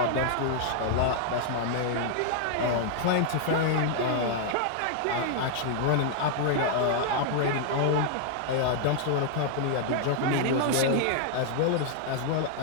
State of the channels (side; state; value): both; different; correlation -0.01